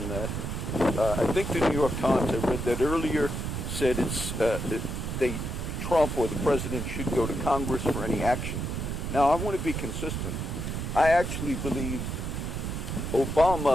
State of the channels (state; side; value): noise; right; rumble, 3 dB below the sound